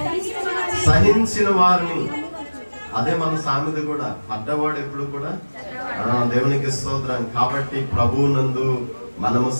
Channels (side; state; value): both; inverted; correlation -1.00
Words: సహించిన వారిని, అదే మన సామెత కూడా, పడ్డవాడు ఎప్పుడు కూడా దేవునికి స్తోత్రం. కాబట్టి ప్రభువునందు మనము